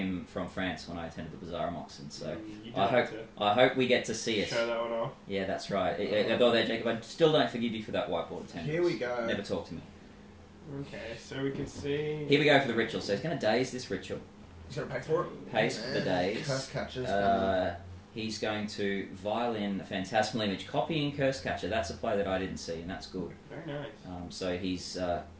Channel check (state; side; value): identical; both; correlation 1.00